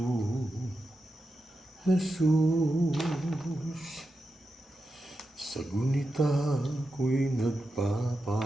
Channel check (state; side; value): normal; both; correlation 0.89